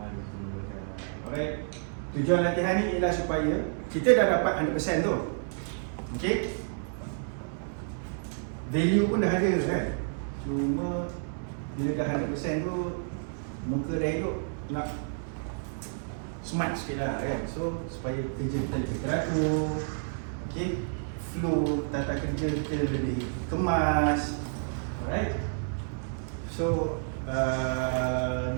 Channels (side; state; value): left; silent; digital silence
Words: alright, tujuan latihan ni ialah supaya kita dah dapat 100% tu. Okay, value pun dah ada kan, cuma bila dah 100% tu muka dah hidup, nak smart sikit lah kan. So supaya kerja kita lebih teratur, okay, flow tata kerja kita lebih kemas. Alright. So